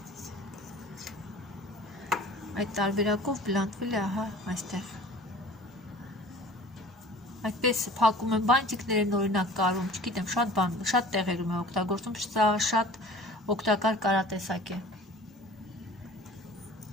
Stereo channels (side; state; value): both; normal; correlation 0.44